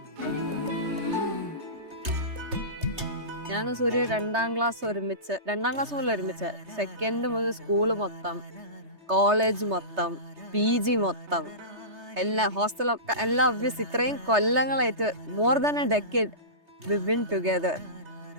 സൂര്യ രണ്ടാം ക്ലാസ് മുതൽ ഒരുമിച്ച് സെക്കൻഡ് മുതൽ സ്കൂള് മൊത്തം, കോളേജ് മൊത്തം, PG മൊത്തം, എല്ലാ ഹോസ്റ്റലൊക്കെ എല്ലാം ഒബ്വിയസ് ഇത്രയും കൊല്ലങ്ങളായിട്ട് more than a decade we been together.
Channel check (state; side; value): late; left; 3.3 ms